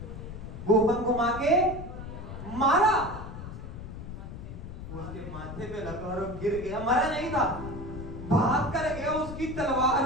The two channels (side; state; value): left; noise; rumble, 10 dB below the sound